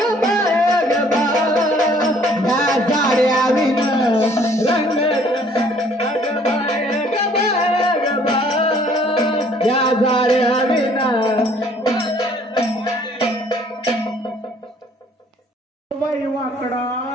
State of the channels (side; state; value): both; normal; correlation 0.59